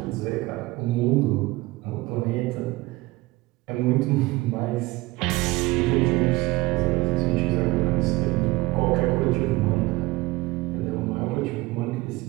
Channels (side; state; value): left; quieter; 20.8 dB